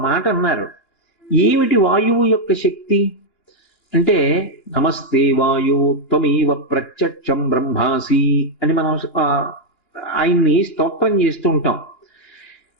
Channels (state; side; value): late; right; 2.9 ms